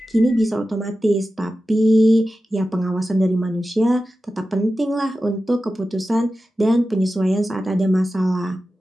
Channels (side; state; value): both; normal; correlation 0.93